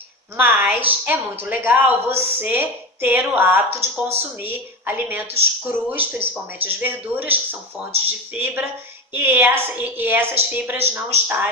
Mas é muito legal você ter o hábito de consumir alimentos crus, principalmente as verduras, que são fontes de fibra, e essas fibras não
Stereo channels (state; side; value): normal; both; correlation 0.22